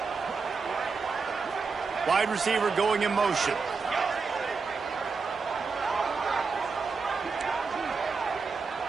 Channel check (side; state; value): left; quieter; 4.8 dB